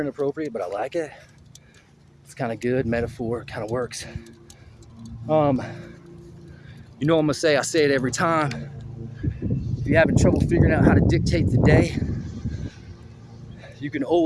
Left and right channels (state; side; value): identical; both; correlation 1.00